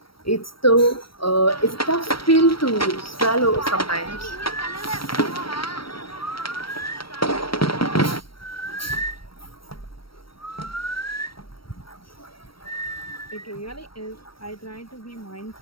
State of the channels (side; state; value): right; late; 0.75 ms